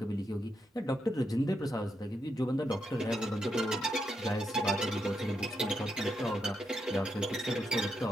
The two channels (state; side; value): normal; both; correlation 0.82